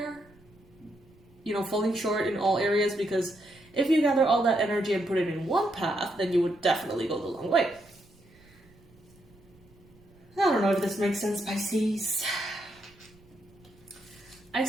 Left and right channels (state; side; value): noise; right; rumble, 28 dB below the sound